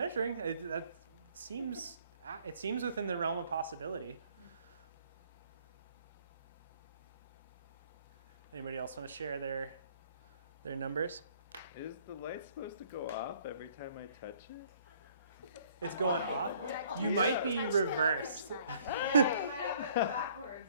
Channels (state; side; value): inverted; both; correlation -0.59